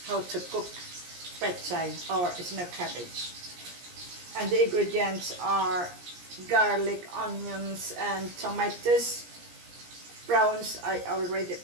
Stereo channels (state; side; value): late; left; 17 ms